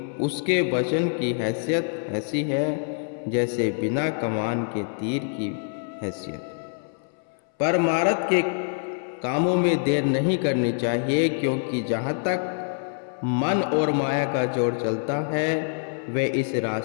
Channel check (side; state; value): right; silent; 61 dB below the other